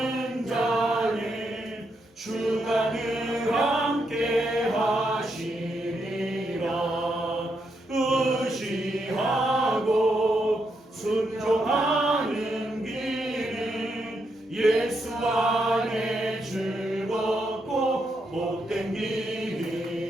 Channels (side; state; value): both; normal; correlation 0.81